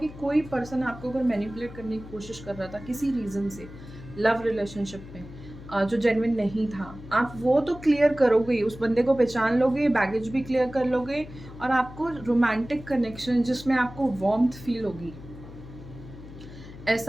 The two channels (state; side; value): noise; left; hum, 15 dB below the sound